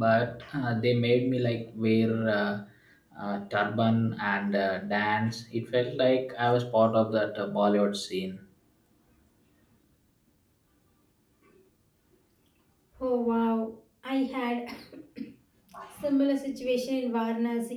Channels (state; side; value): identical; both; correlation 1.00